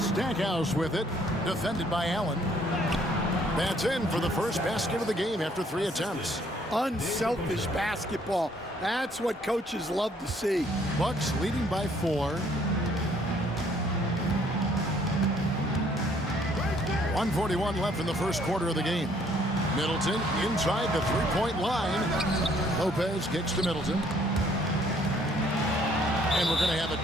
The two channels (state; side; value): normal; both; correlation 0.64